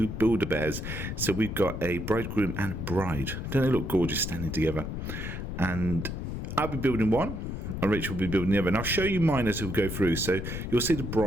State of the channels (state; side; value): noise; left; rumble, 5 dB below the sound